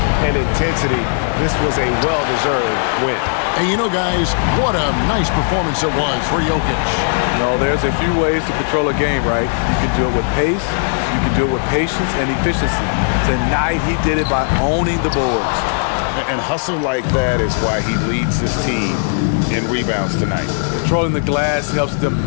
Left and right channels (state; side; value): silent; right; 68 dB below the other